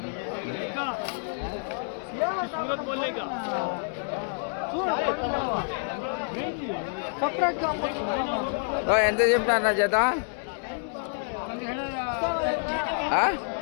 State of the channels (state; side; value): silent; right; digital silence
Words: ఎంత చెప్తాను జత?